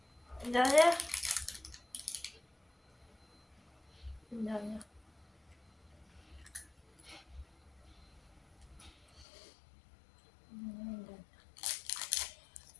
Une dernière. Une dernière.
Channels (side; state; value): right; drops out; at 9.2 s